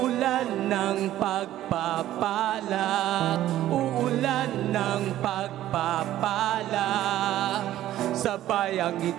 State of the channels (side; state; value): left; quieter; 13.4 dB